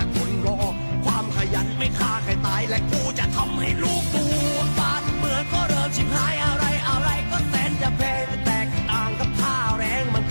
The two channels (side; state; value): both; inverted; correlation -1.00